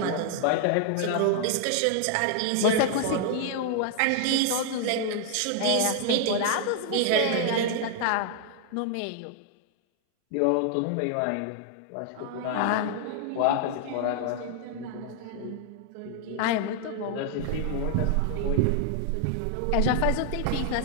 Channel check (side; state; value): both; different; correlation 0.00